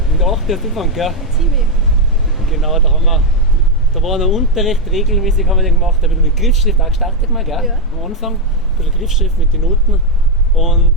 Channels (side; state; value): both; normal; correlation 0.02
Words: der 8. Anfang, gell? Ziemlich. Genau, da war noch Unterricht, regelmäßig haben wir den gemacht, da bin ich mit Griffschrift auch gestartet mal, gell? Ja. Am Anfang, ein bisschen Griffschrift mit den Noten und